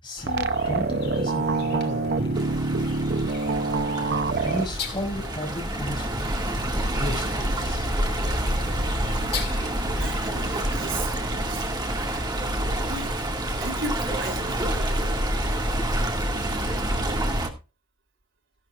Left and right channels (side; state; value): both; normal; correlation 0.50